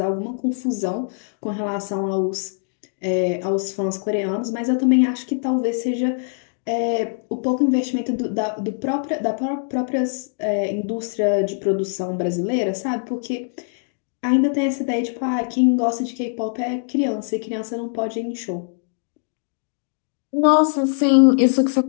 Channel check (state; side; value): silent; right; digital silence